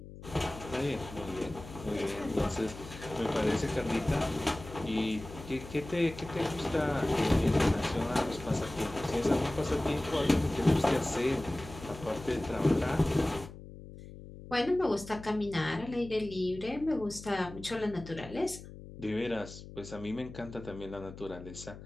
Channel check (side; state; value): left; noise; hum, 15 dB below the sound